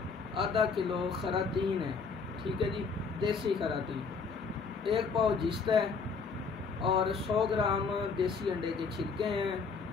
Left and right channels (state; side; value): quieter; right; 5.0 dB